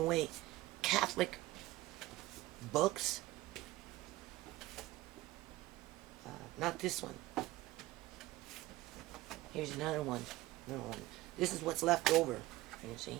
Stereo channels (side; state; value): left; quieter; 18.1 dB